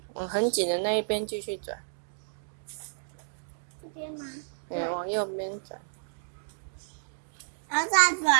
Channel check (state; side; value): silent; left; digital silence